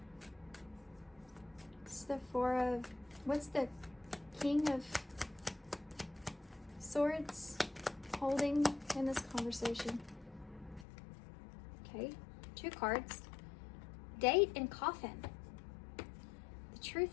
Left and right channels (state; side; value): drops out; right; at 10.9 s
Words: It's the Four of... What's the King of Swords holding in this conversation? Okay, 2 cards. Date and Coffin. The